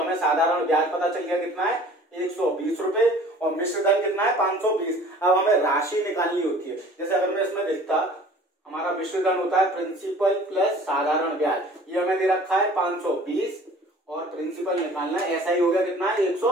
साधारण ब्याज पता चल गया कितना है 120 रुपए और मिश्र धन कितना है 520। अब हमें राशि निकालनी होती है। जैसे अगर मैं इसमें देखता हमारा मिश्र धन होता है प्रिंसिपल प्लस साधारण ब्याज, ये हमें दे रखा है 520 और प्रिंसिपल निकालना है, ऐसा ही हो गया कितना है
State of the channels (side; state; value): both; normal; correlation 0.48